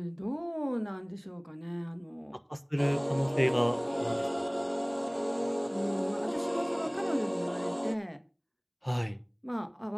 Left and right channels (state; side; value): identical; both; correlation 1.00